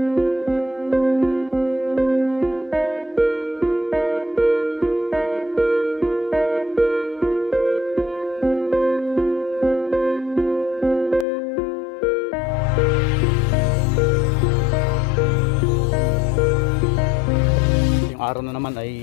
Araw na naman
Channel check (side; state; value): right; drops out; at 11.2 s